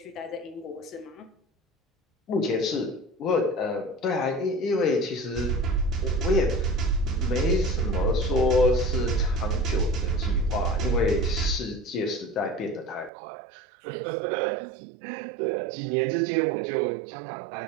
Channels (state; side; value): drops out; left; at 13.1 s